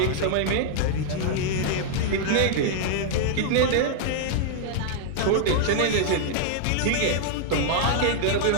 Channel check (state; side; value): different; both; correlation -0.01